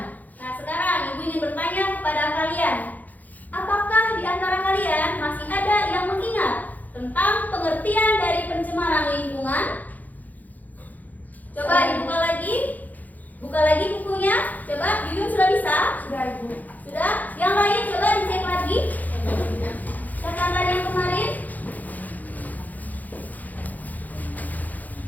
Nah, sekarang Ibu ingin bertanya kepada kalian, apakah di antara kalian masih ada yang mengingat tentang pengertian dari pencemaran lingkungan? Coba dibuka lagi. Buka lagi bukunya. Coba, Yuyun sudah bisa? Sudah, Ibu. Sudah? Yang lain coba dicek lagi. Catatan yang kemarin.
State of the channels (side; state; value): right; late; 0.081 ms